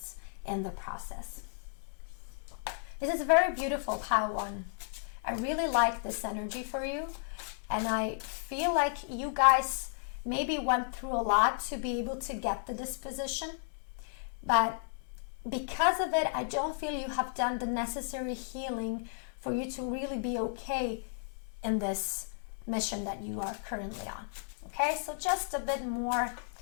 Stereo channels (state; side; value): silent; right; digital silence